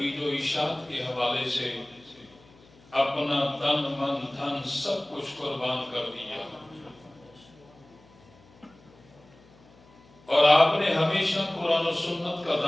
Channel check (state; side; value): noise; left; hum, 27 dB below the sound